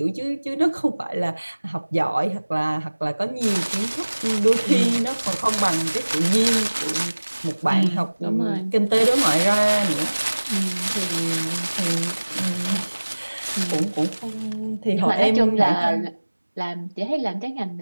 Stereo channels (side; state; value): both; inverted; correlation -1.00